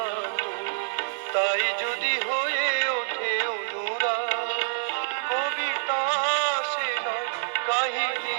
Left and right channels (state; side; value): silent; left; 60 dB below the other